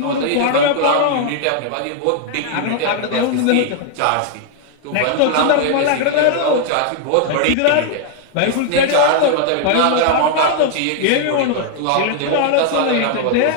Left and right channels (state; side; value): different; both; correlation 0.00